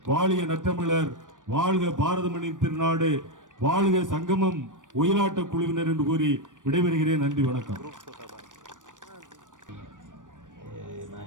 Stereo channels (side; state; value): left; late; 0.87 ms